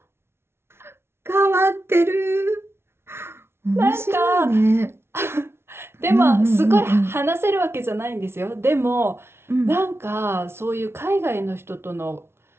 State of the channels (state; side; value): late; left; 0.12 ms